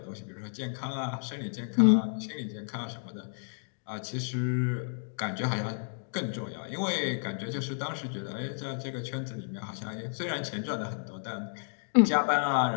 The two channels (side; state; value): right; silent; digital silence